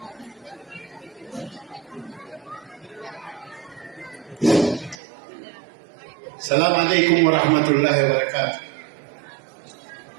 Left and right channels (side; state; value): left; drops out; at 5.0 s